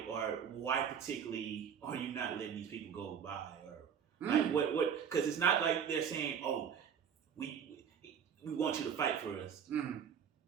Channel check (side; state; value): left; quieter; 7.7 dB